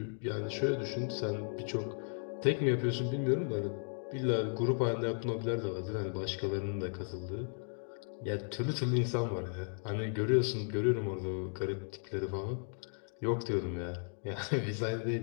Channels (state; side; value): silent; right; 54 dB below the other